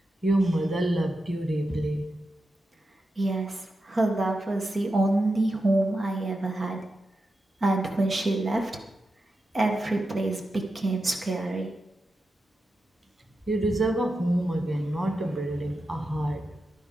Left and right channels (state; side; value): normal; both; correlation 0.89